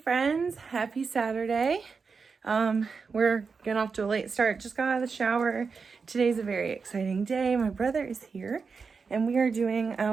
Happy Saturday. We're getting off to a late start. Just got out of the shower. Today's a very exciting day. My brother is here and we are doing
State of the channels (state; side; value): quieter; left; 5.1 dB